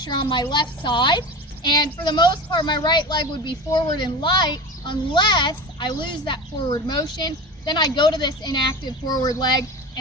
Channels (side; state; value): both; normal; correlation 0.30